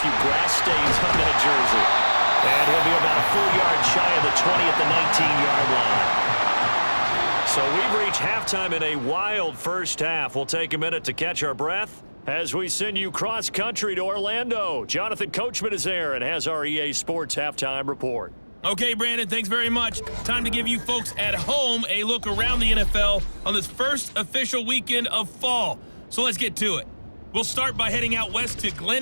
grass stains on that jersey. And he'll be about a full yard shy of the 20 at the 19-yard line. So we've reached halftime in a wild first half. We'll take a minute to catch our breath as we send you cross-country to Orlando. Jonathan Coachman is there and has our EA Sports halftime report. Okay, Brandon, thanks very much. Time to give you folks at home a look around the NFL on this first official weekend of fall. So let's get to it. We'll start by heading out west to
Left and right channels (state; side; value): inverted; both; correlation -1.00